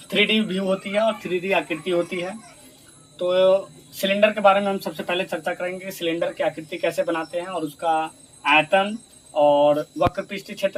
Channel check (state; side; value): identical; both; correlation 1.00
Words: 3D व्यू होती है और 3D आकृति होती है। तो सिलेंडर के बारे में हम सबसे पहले चर्चा करेंगे। सिलेंडर की आकृति कैसे बनाते हैं और उसका आयतन और वक्र पृष्ठीय